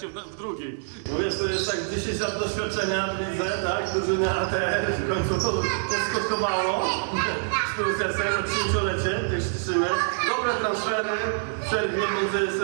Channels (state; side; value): silent; left; digital silence